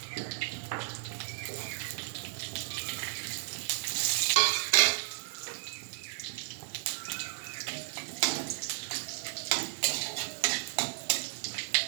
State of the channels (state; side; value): silent; left; 55 dB below the other